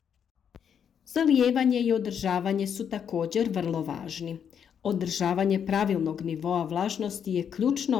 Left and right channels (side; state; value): right; quieter; 8.0 dB